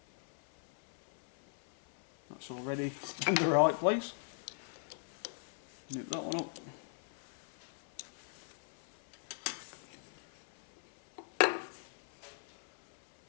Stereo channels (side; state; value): right; silent; 52 dB below the other